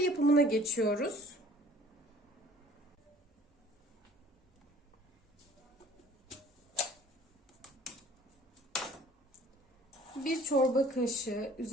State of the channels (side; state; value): both; normal; correlation 0.52